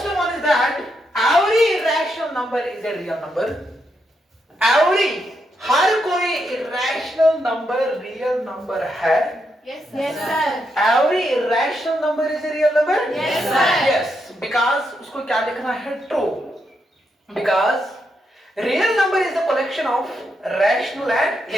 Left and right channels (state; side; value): normal; both; correlation 0.81